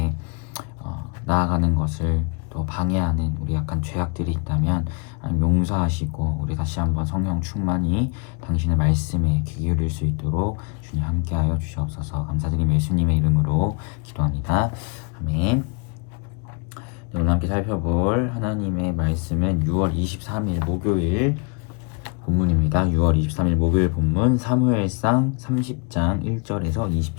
나아가는 것을 또 방해하는 우리 약간 죄악들이 있다면 용서하시고 우리 다시 한번 성령 충만히 당신의 말씀에 귀 기울일 수 있도록 주님 함께하여 주시옵소서. 감사드리며 예수님의 이름으로 기도합니다. 아멘. 오늘 함께 살펴볼 하나님의 말씀은 6월 23일 목요일 본문입니다. 6월 23일 목요일 본문 사무엘상 30장 1절에서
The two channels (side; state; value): right; quieter; 33.6 dB